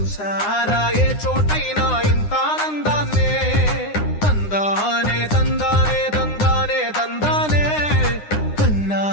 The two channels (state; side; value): late; right; 9.8 ms